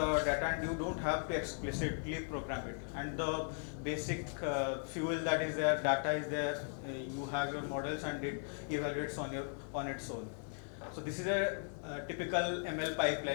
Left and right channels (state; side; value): silent; right; 53 dB below the other